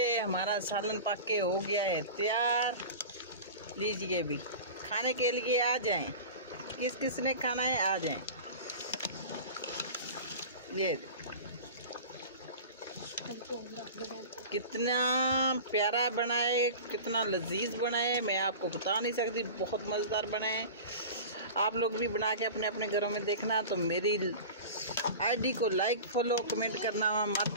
हमारा सालन पक के हो गया है तैयार। लीजिए भी खाने के लिए आ जाएं। किस किस ने खाना है आ जाएं। ये कितना प्यारा बना है, कितना लजीज बना है, मैं आपको बता नहीं सकती। बहुत मज़ेदार बना है। आप लोग भी बना के अपने अपने घरों में देखना। तो मेरी आईडी को लाइक फॉलो कमेंट करना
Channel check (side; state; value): both; inverted; correlation -0.34